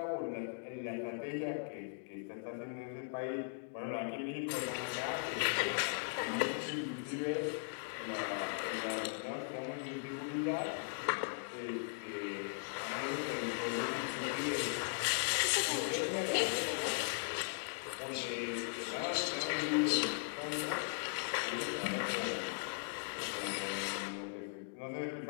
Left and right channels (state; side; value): silent; right; digital silence